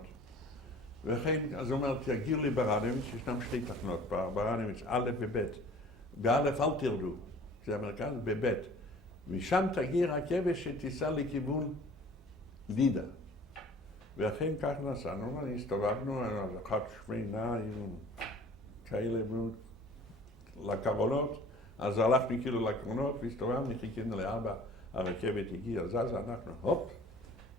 וכן, אז הוא אומר, תגיעו לברנוביץ', ישנם שתי תחנות, ברנוביץ', א' וב'. באלף אל תרדו, זה המרכז, בב'. משם תגיע רכבת שתיסע לכיוון לידה. ואכן כך נסענו, הסתובבנו, אחת שמנה עם כאלה לקרונות, אז הלכנו כאילו לקרונות והסתובבנו, חיכינו לארבע, הרכבת הגיעה, זזה, אנחנו הופ,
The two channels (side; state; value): both; normal; correlation 0.48